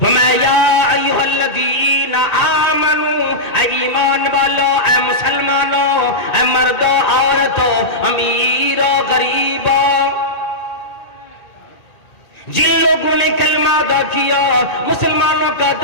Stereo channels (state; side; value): late; right; 1.9 ms